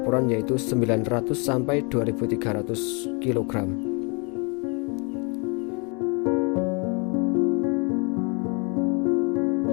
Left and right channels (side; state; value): right; quieter; 32.7 dB